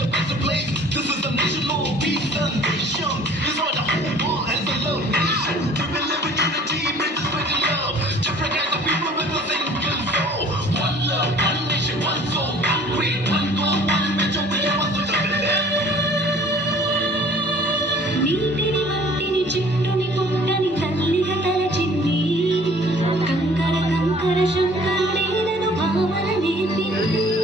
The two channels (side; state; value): both; normal; correlation 0.52